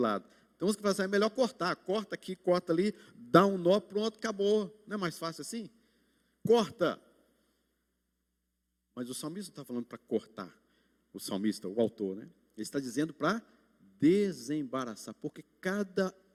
Então, você vai fazer, é melhor cortar. Corta aqui, corta ali, dá um nó, pronto, acabou. Não é mais fácil assim? Corta. Mas o salmista não está falando para cortar. O salmista, o autor, né? Ele está dizendo para desembaraçar, porque cada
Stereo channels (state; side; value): identical; both; correlation 1.00